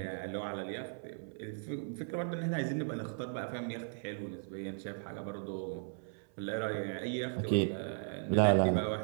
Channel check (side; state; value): left; silent; 53 dB below the other